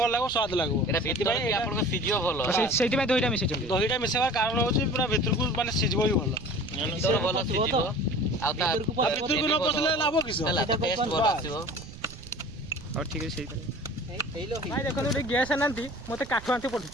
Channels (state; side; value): noise; right; rumble, 16 dB below the sound